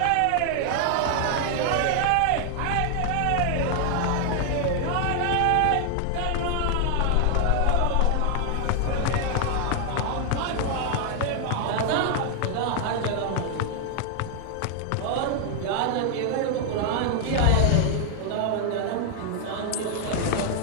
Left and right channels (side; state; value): both; different; correlation 0.00